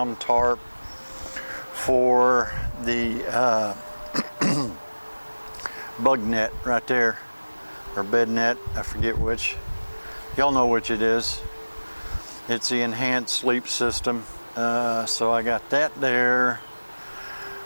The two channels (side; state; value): both; inverted; correlation -1.00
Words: tarp for the bug net right there, or bed net, I forget which. Y'all know which it is. It's the enhanced sleep system. So I got that there.